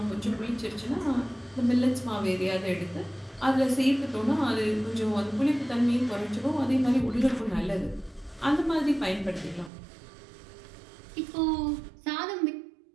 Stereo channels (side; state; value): left; drops out; at 9.7 s